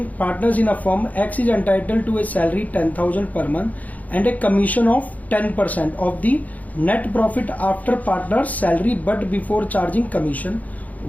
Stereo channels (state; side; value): late; right; 0.076 ms